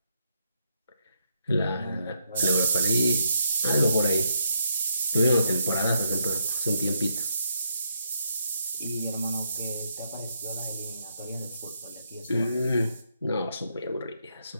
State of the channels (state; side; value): inverted; both; correlation -0.77